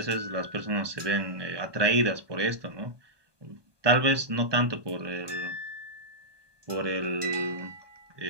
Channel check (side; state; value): left; late; 1.2 ms